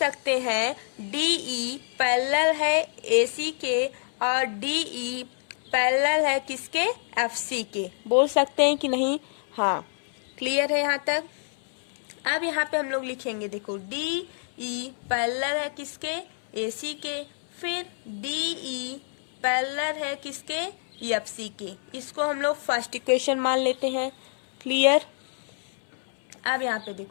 हैं DE पैरेलल है AC के और DE पैरेलल है किसके FC के, बोल सकते हैं कि नहीं। हाँ, क्लियर है यहाँ तक। अब यहाँ पे हम लोग लिखेंगे, देखो डी ई पैरेलल है किसके, AC के, फिर DE पैरेलल है किसके, FC के। इसको हम लोग फर्स्ट इक्वेशन मान लेते हैं। क्लियर। अब यहाँ पे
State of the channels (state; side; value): silent; right; 60 dB below the other